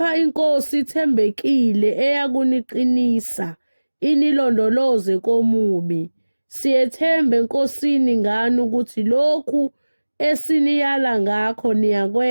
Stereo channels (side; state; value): both; inverted; correlation -1.00